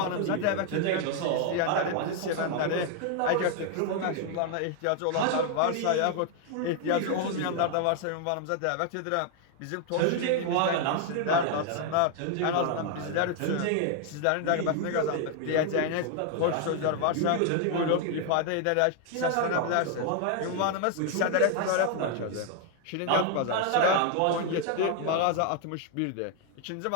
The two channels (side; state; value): both; different; correlation 0.00